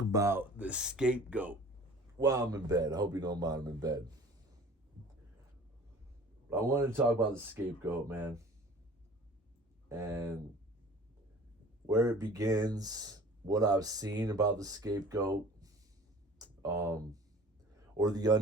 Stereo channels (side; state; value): both; normal; correlation 0.46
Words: about the scapegoat while I'm in bed. I hope you don't mind I'm in bed. But I wanted to talk about the scapegoat, man, and where it begins, what I've seen about the scapegoat, or the